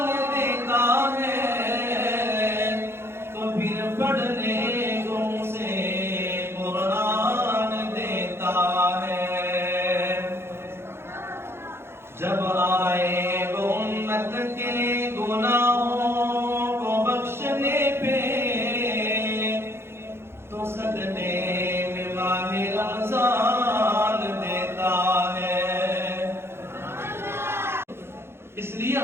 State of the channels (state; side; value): late; left; 0.12 ms